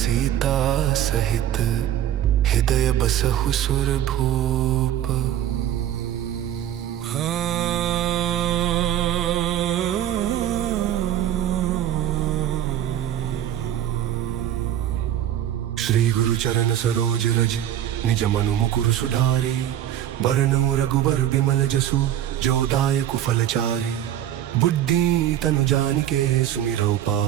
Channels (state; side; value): quieter; left; 11.4 dB